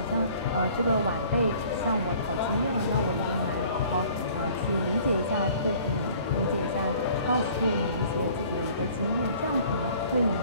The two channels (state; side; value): inverted; both; correlation -0.52